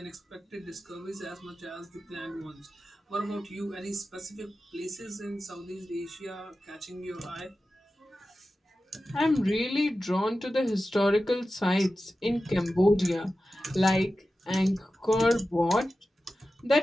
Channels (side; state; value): both; normal; correlation 0.93